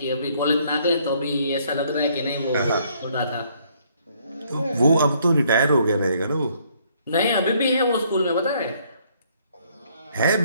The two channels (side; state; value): both; inverted; correlation -0.66